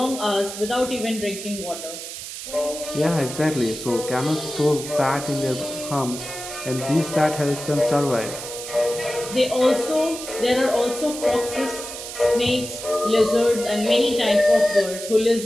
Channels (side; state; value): right; noise; hiss, 9 dB below the sound